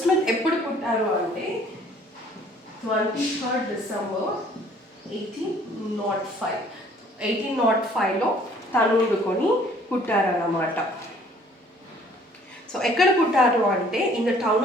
స్మిత్ ఎప్పుడు పుట్టారు అంటే 23rd December 1805. 1805లో తను వండుకొని పుట్టారన్నమాట. సో ఎక్కడ పుట్టారు అంటే in the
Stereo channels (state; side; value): normal; both; correlation 0.57